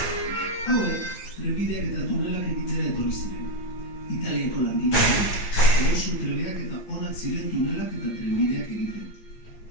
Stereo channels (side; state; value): right; late; 9.1 ms